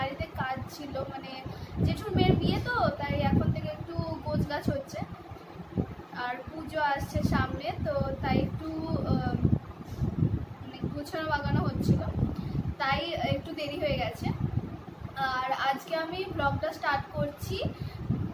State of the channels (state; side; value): identical; both; correlation 1.00